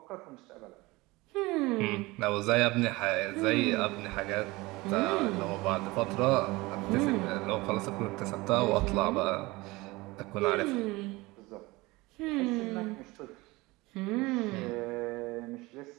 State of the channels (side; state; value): left; quieter; 21.8 dB